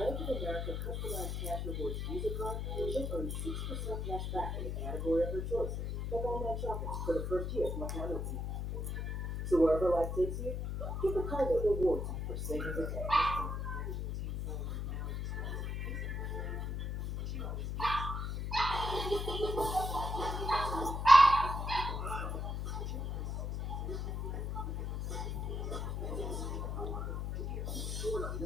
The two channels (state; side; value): noise; left; hum, 2 dB below the sound